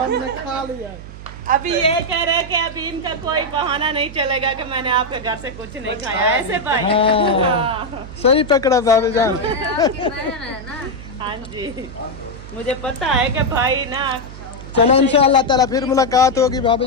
खा लिया। अभी ये कह रहे कि अभी इनका कोई बहाना नहीं चलेगा कि मैंने आपके घर से कुछ नहीं खाया, ऐसे भाई। हाँ सही पकड़ा भाभी जान। हाँ जी मुझे पता है कि भाई ना। चलो इंशाअल्लाह ताला फिर मुलाकात होगी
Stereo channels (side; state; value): right; noise; hum, 14 dB below the sound